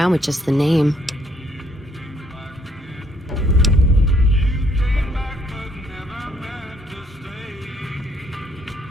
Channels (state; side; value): normal; both; correlation 0.67